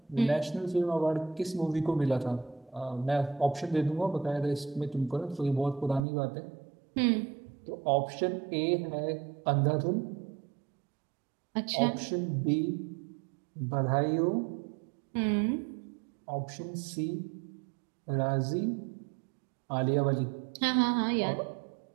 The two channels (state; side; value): drops out; left; at 6.0 s